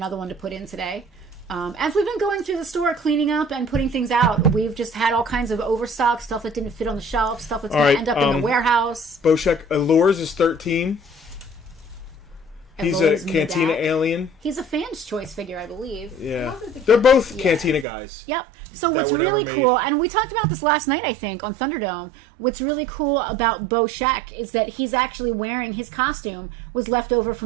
one to put in today. As we've been going through the store, cleaning up and putting things out, we've just had all kinds of overstock, stuff that didn't fit on the shelf, stuff that's going to end up in the warehouse. Boshek, Allures is 13. He's a Cantina Medak. alien. He's a fan's choice figure, I believe. Yeah. They're both Cantina guys. Yep. So that what's were never really made. cool, and we talked about this last night, I think, on Thunderdome. What's really cool about Boshek is that he's actually wearing his costume was left over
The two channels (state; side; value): drops out; left; at 17.9 s